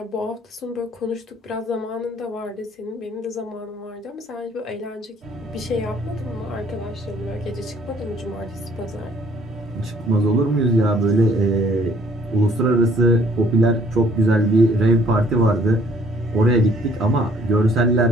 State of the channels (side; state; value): both; normal; correlation 0.60